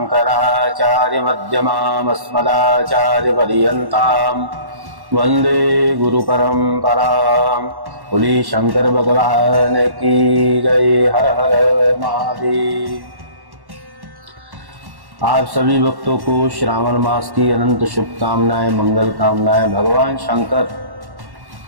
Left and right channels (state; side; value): late; left; 1.1 ms